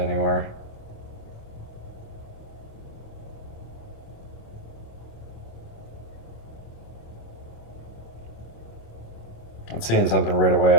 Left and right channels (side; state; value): right; late; 27 ms